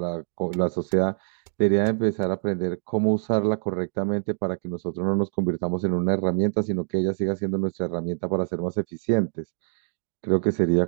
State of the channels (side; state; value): left; silent; digital silence